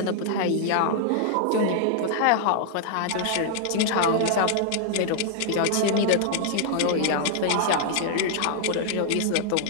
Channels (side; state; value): both; different; correlation -0.01